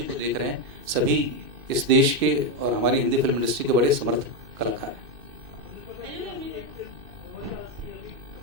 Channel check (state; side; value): late; left; 2.6 ms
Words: को देख रहे हैं, सभी इस देश के और हमारी हिंदी फिल्म इंडस्ट्री के बड़े समर्थ कलाकार हैं।